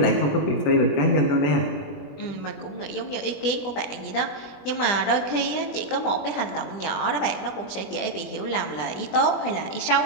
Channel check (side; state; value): right; late; 20 ms